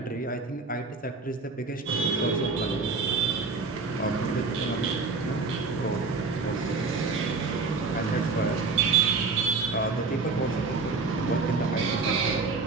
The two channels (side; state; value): left; quieter; 4.2 dB